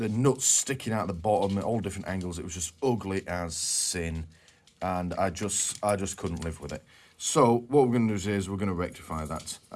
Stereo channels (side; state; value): both; identical; correlation 1.00